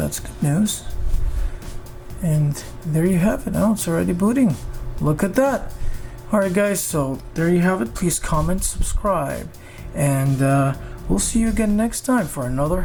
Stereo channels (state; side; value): identical; both; correlation 1.00